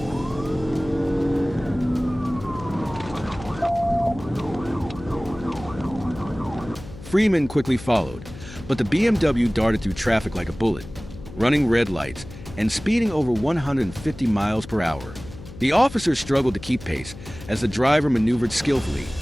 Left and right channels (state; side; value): noise; left; hum, 15 dB below the sound